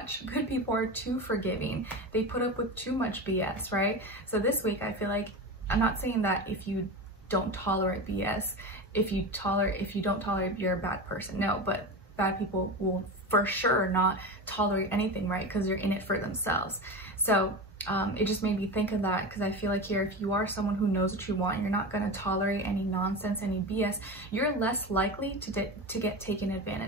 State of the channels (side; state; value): both; normal; correlation 0.24